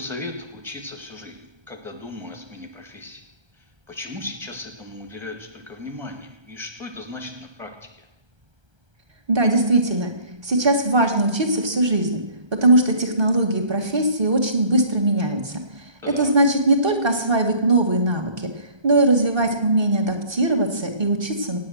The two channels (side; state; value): left; late; 1.3 ms